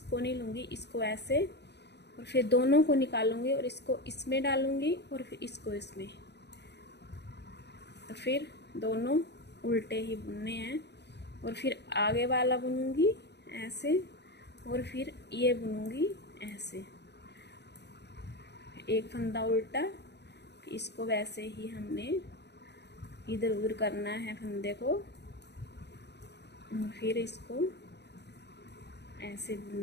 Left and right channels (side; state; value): right; late; 0.49 ms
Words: नहीं लूँगी, इसको ऐसे और फिर दोनों को निकालूंगी और इसको इसमें डालूंगी और फिर इसको इसमें, तो फिर दोनों उल्टे ही बुनने हैं। और फिर आगे वाला बुनूंगी ऐसे और फिर ये बुनूंगी ऐसे, एक फंदा उल्टा, इसको वैसे ही हमने इधर उधर करना है फंदे को और फिर इसको ऐसे